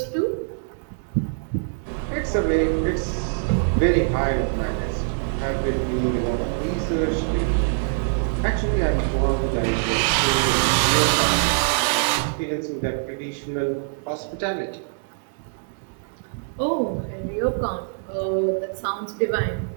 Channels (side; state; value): left; silent; digital silence